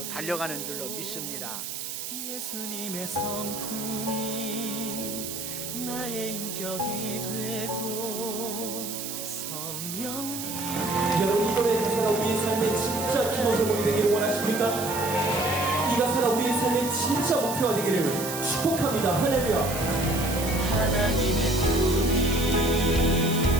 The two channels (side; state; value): right; noise; hiss, 7 dB below the sound